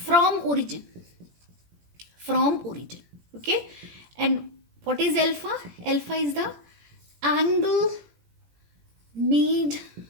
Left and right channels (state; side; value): late; left; 17 ms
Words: origin. Okay, and what is alpha? Alpha is the angle made